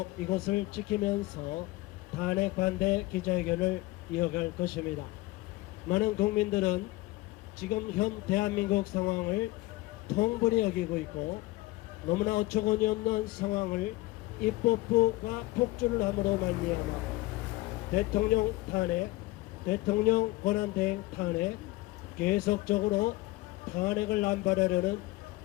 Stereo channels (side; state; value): right; quieter; 19.5 dB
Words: 이곳을 지키면서 탄핵 반대 기자회견을 이어갈 것입니다. 많은 국민들은 지금 현 대한민국 상황을 통분히 여기고 있고, 너무나 어처구니 없는 상황을 입법부가 폭주를 함으로 말미암아 대통령 탄핵, 대통령 권한대행 탄핵, 계속적으로 탄핵을 남발하려는